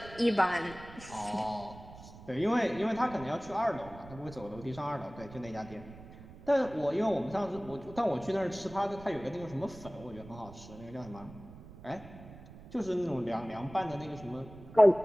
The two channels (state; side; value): noise; right; rumble, 17 dB below the sound